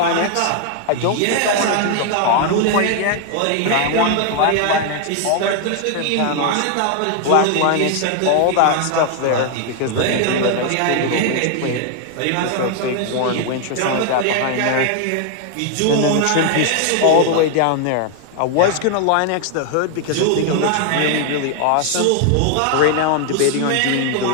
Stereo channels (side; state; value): both; different; correlation 0.00